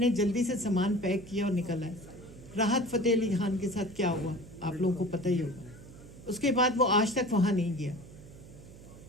जल्दी से सामान पैक किया और निकल आए। राहत फ़तेह अली खान के साथ क्या हुआ आप लोगों को पता ही होगा। उसके बाद वो आज तक वहाँ नहीं गया।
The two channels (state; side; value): noise; right; hum, 18 dB below the sound